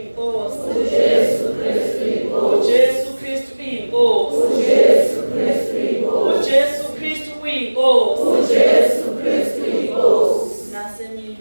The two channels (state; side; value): inverted; both; correlation -1.00